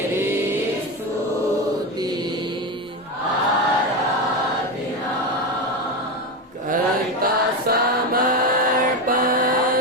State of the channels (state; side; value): normal; both; correlation 0.16